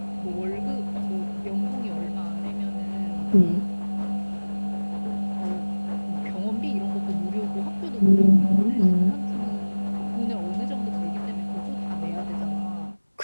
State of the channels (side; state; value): both; inverted; correlation -1.00